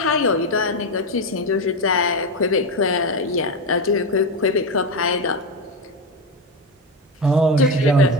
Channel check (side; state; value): both; normal; correlation 0.14